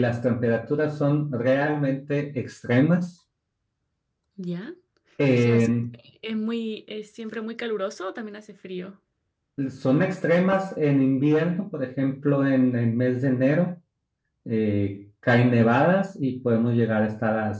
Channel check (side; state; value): both; identical; correlation 1.00